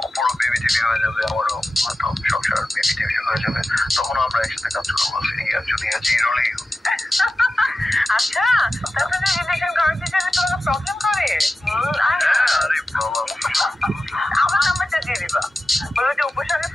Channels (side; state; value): both; normal; correlation 0.94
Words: অপরও বেবি টেবি হয়ে যাবে, আমারও হয়তো সংসার বেবি টেবি হয়ে যাবে, তখন আমরা একসাথে কাজ করবো সিনিয়র জুনিয়র যে রোলেই হোক। আচ্ছা, তাহলে রিলেশন কনভারসেশনে তোমাকে প্রবলেম করে? আরে বাবা, আমার নাম্বারটা দিয়ে দিবা। বলো যে উপর সঙ্গে